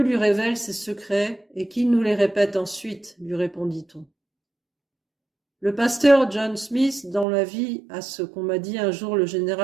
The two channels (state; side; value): drops out; left; at 7.2 s